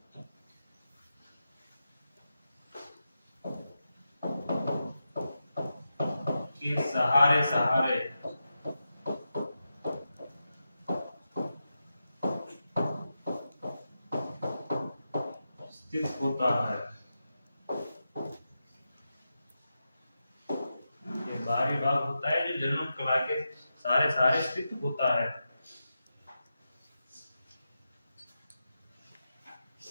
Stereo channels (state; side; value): inverted; both; correlation -0.89